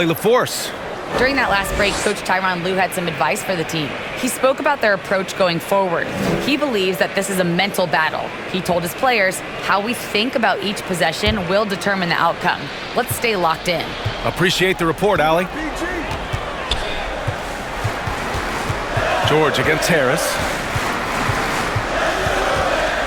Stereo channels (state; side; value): identical; both; correlation 1.00